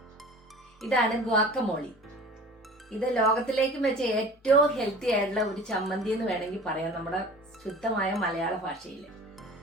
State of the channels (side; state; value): both; normal; correlation 0.41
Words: ഇതാണ് ഗുവാക്കമോളി. ഇത് ലോകത്തിലേക്കും വെച്ച് ഏറ്റവും ഹെൽത്തി ആയിട്ടുള്ള ഒരു ചമ്മന്തി എന്ന് വേണമെങ്കിൽ പറയാം, നമ്മുടെ ശുദ്ധമായ മലയാള ഭാഷയിൽ.